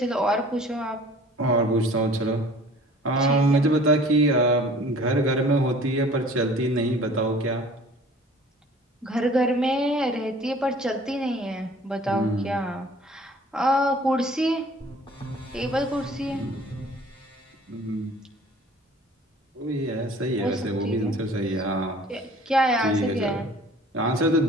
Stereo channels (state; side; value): normal; both; correlation 0.49